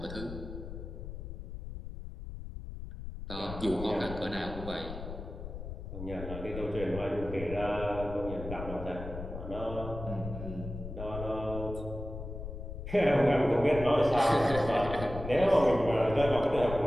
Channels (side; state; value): left; noise; rumble, 9 dB below the sound